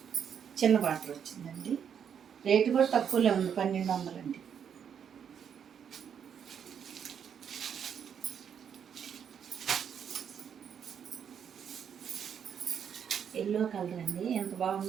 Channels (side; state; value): left; quieter; 8.0 dB